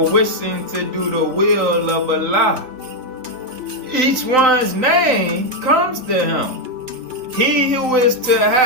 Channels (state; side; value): late; left; 3.9 ms